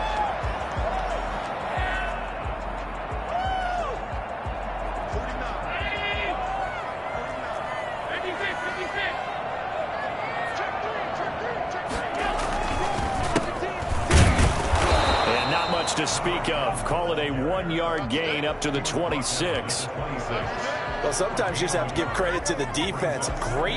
To speak of. Call it a 1-yard gain up to the 26. Well, sometimes you just have to give credit to the defense.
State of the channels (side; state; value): both; identical; correlation 1.00